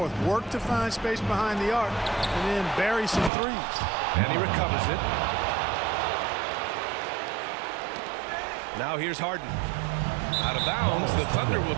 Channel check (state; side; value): drops out; left; at 3.3 s